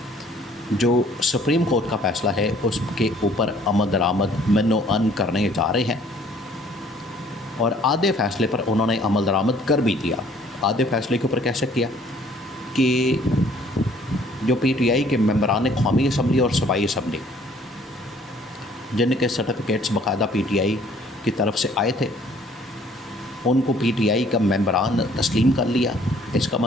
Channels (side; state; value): both; normal; correlation 0.58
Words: جو سپریم کورٹ کا فیصلہ ہے اس کے اوپر عمل درآمد من و ان کرنے جا رہے ہیں، اور آدھے فیصلے پر انہوں نے عمل درآمد کر بھی دیا۔ آدھے فیصلے کے اوپر کیسے کیا کہ جو پی ٹی آئی کے ممبران قومی اسمبلی اور صوبائی اسمبلی، جن کے سرٹیفکیٹس باقاعدہ پی ٹی آئی کی طرف سے آئے تھے، ان کو پی ٹی آئی کا ممبران تسلیم کر لیا۔ اس کا